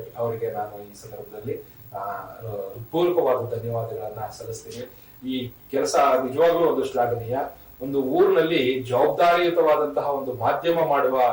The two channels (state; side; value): identical; both; correlation 1.00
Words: ಅವರಿಗೆ ನಾನು ಈ ಸಂದರ್ಭದಲ್ಲಿ ಪೂರ್ವಕವಾದ ಧನ್ಯವಾದಗಳನ್ನ ಸಲ್ಲಿಸ್ತೀನಿ. ಈ ಕೆಲಸ ನಿಜವಾಗ್ಲೂ ಒಂದು ಶ್ಲಾಘನೀಯ. ಒಂದು ಊರಿನಲ್ಲಿ ಜವಾಬ್ದಾರಿಯುತವಾದಂತಹ ಒಂದು ಮಾಧ್ಯಮ ಮಾಡುವ